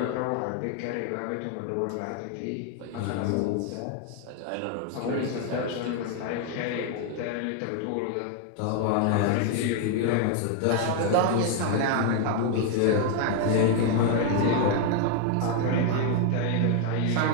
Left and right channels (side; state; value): both; different; correlation 0.01